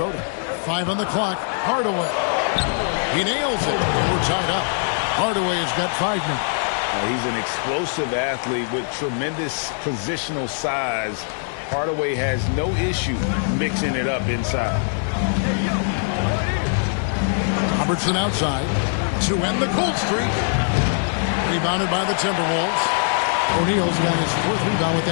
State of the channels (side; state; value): right; silent; digital silence